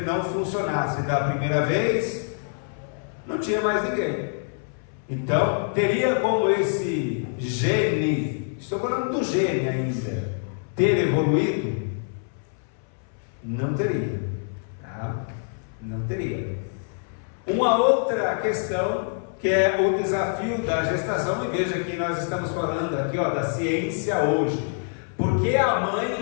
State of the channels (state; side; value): silent; right; 61 dB below the other